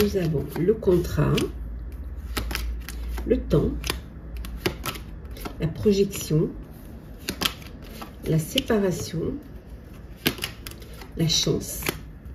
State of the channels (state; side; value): identical; both; correlation 1.00